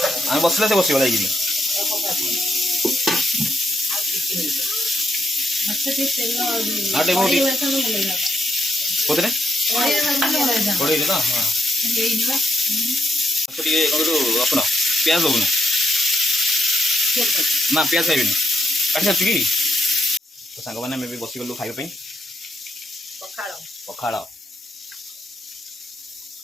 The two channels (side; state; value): both; normal; correlation 0.83